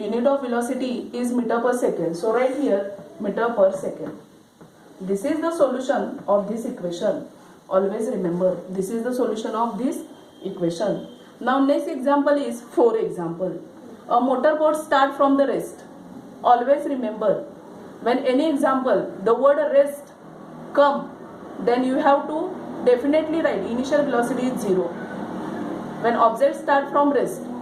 of velocity is meter per second. So right here, meter per second. This is the solution of this equation. Always remember, this is the solution of this equation. Now next example is 4 example. A motorboat start from the rest. Always remember, when any example, the word rest come, then you have to definitely write initial velocity is 0. When object start from rest,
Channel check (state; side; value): identical; both; correlation 1.00